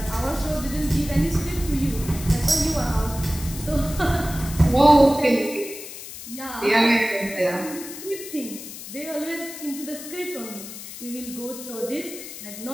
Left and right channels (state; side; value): noise; left; hiss, 12 dB below the sound